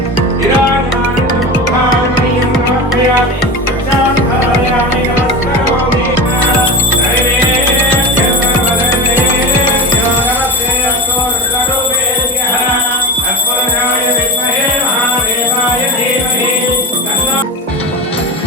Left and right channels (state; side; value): normal; both; correlation 0.26